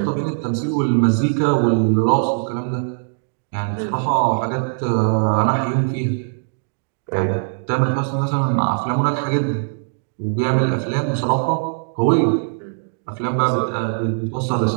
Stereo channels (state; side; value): silent; left; digital silence